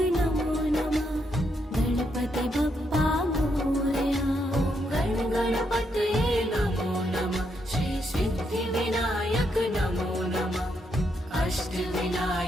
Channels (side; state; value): both; normal; correlation 0.78